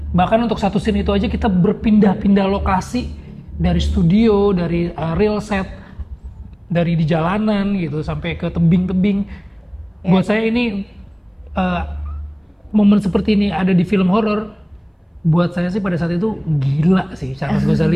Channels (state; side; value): identical; both; correlation 1.00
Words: Bahkan untuk satu scene itu aja kita berpindah-pindah lokasi, dari studio, dari real set, dari di jalanan gitu sampai ke tebing-tebing. Buat saya ini momen seperti ini ada di film horor. Buat saya sih pada saat itu gila sih, Charles